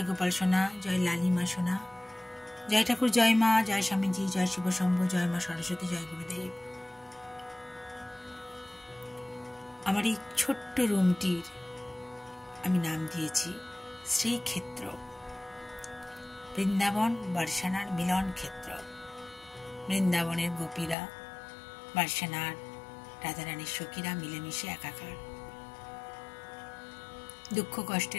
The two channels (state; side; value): drops out; right; at 21.0 s